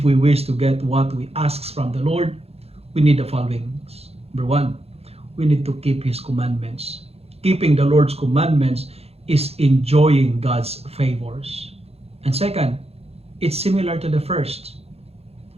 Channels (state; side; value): late; left; 0.29 ms